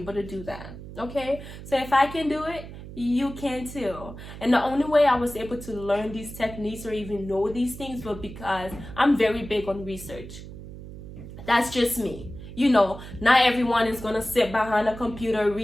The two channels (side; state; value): right; noise; hum, 13 dB below the sound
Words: to do that. Okay, so if I can do it, you can too. And the only way I was able to learn these techniques or even know these things was because I'm very big on research. That's just me. Not everyone is gonna sit behind a computer